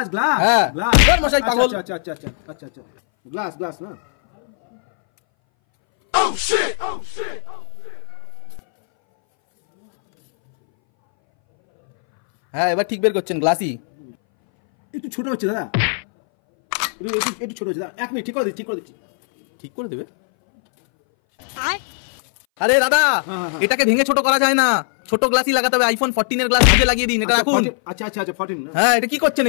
গ্লাস হ্যাঁ গ্লাস। ওর মশাই পাগল। আচ্ছা আচ্ছা আচ্ছা আচ্ছা আচ্ছা আচ্ছা গ্লাস গ্লাস না? হ্যাঁ এবার ঠিক বের করছেন, গ্লাসই। একটু ছোট হচ্ছে দাদা, একটু ছোট হচ্ছে দাদা। 1 মিনিট ঠিক করে দিচ্ছি ঠিক করে দিচ্ছি। ঠিক করে দেবে? আরে দাদা এটাকে ভেঙে ছোট করা যায় না, ছোট গ্লাসই লাগাতে হবে। আইফোন 14 এর গ্লাস ভেঙে লাগিয়ে দিন, এটা রাখুন। আচ্ছা আচ্ছা আচ্ছা 14 না? হ্যাঁ এটা কি করছেন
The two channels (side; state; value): right; silent; 62 dB below the other